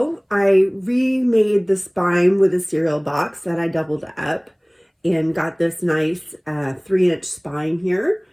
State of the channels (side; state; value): both; identical; correlation 1.00